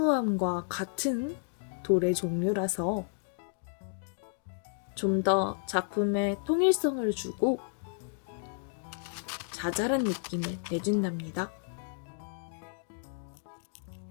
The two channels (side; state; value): right; silent; digital silence